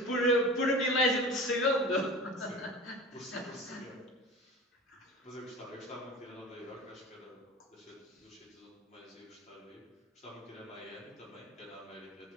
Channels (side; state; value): both; normal; correlation 0.35